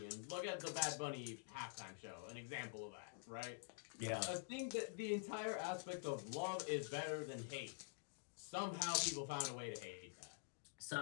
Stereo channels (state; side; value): silent; right; digital silence